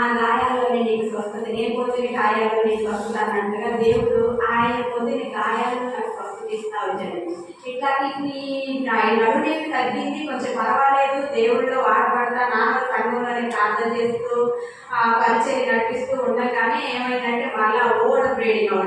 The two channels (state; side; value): identical; both; correlation 1.00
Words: గాయాల్లోనే నీకు స్వస్థత, నేను పొందిన గాయాల్లో నీకు స్వస్థత అన్నట్టుగా దేవుడు ఆయన పొందిన గాయాలను నాకు స్వస్థత ఇస్తా వచ్చాడు. ఇట్లా నడునేమి తగ్గింది, కొంచెం పర్వాలేదు, దేవుడిలో వాడబడతా నాన్న సంఘంలోనే ప్రార్థన చేస్తూ పరిచయం నడిపిస్తూ ఉండగానే ఏమైందంటే మళ్ళా ఓడ బ్రీడింగ్